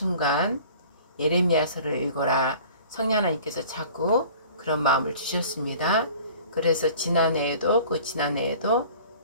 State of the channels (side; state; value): both; inverted; correlation -0.47